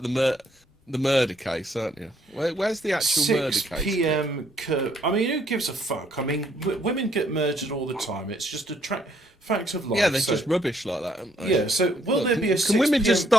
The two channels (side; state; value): both; normal; correlation 0.68